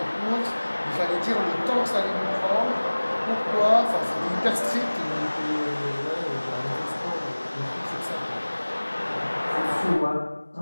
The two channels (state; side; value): inverted; both; correlation -1.00